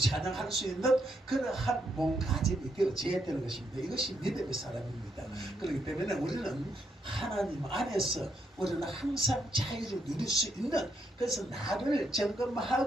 수 있는 그러한 몸가짐이 되어져야 되는 것입니다. 이것이 믿음의 사람입니다. 그렇기 때문에 우리는 하나님 안에서 우리는 항상 자유를 누릴 수 있는 그래서 나를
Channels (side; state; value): both; normal; correlation 0.77